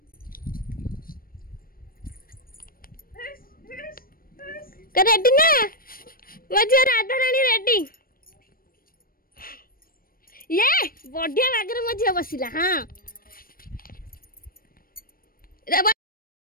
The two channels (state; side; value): late; right; 0.42 ms